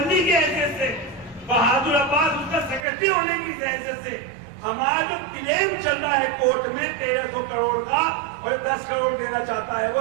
की हैसियत से, बहादुर अब्बास उसका सेक्रेटरी होने की हैसियत से। हमारा जो क्लेम चल रहा है कोर्ट में 1300 करोड़ का और 10 करोड़ देना चाहता है, वो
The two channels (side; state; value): left; drops out; at 2.9 s